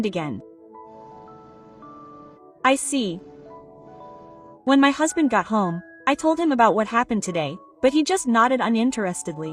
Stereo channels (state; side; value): identical; both; correlation 1.00